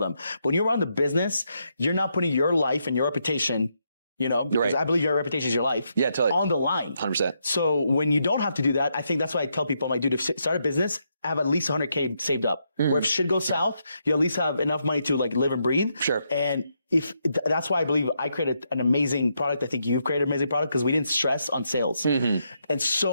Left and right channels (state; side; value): inverted; both; correlation -0.80